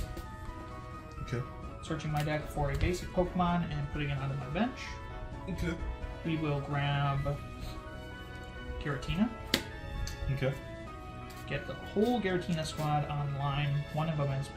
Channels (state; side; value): identical; both; correlation 1.00